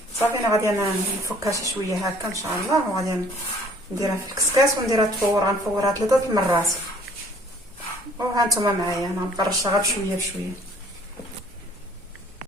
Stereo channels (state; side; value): normal; both; correlation 0.56